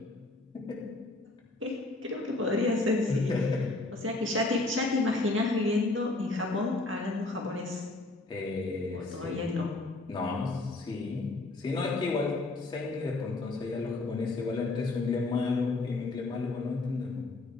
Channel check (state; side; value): quieter; right; 3.1 dB